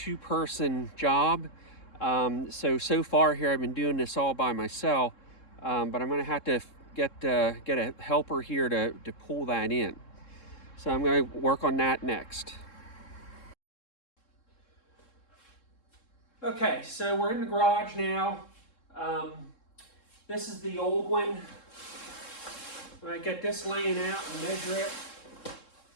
job. So far here I've been doing this all by myself, but I'm going to have to get a helper here to pull that in. So I'm going to work on that next. Okay, so we're in the garage now. This is the old one. I'm going to get this laying out and measure it.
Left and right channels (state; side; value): late; right; 3.7 ms